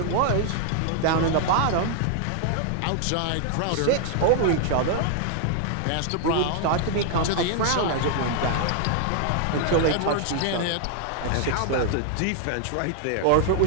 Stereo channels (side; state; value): both; different; correlation 0.00